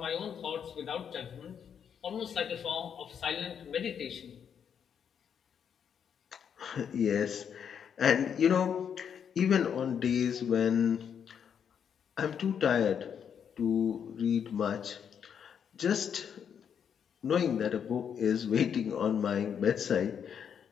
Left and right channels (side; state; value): right; quieter; 7.8 dB